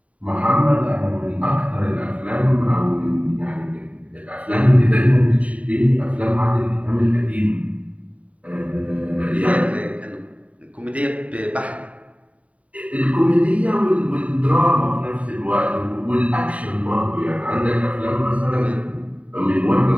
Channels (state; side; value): late; left; 0.067 ms